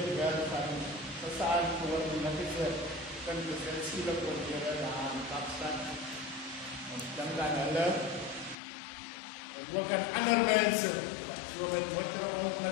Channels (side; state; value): right; drops out; at 8.6 s